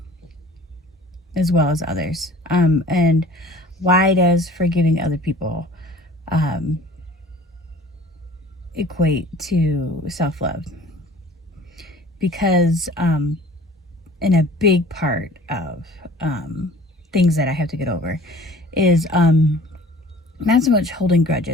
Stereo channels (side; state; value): both; normal; correlation 0.47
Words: as well as others. And why does forgiving other people equate to self-love? Because in a big part of things that I have to get over is not so much holding